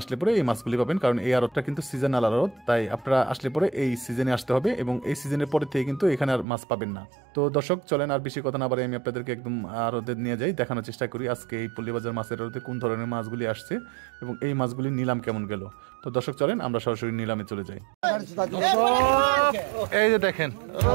আসলে পরে এই মাছগুলি পাবেন, কারণ এই আড়তটা কিন্তু সিজনাল আড়ত, তাই আপনারা আসলে পরে এই সিজনে আসতে হবে এবং এই সিজনের পরে থেকে কিন্তু এখানে আর মাছ পাবেন না। তো দর্শক চলেন আর বেশি কথা না বলে আমি আপনাদেরকে একদম আড়তে নিয়ে যাই, দেখানোর চেষ্টা করি আজকে এই পল্লীবাজার মাছের আড়তে কোন ধরনের মাছগুলি আসছে এবং এই মাছগুলির নিলাম কেমন গেল। তো দর্শক চলেন আমরা সরাসরি নিলামে চলে যাই। এই যে দেখেন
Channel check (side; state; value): left; drops out; at 6.5 s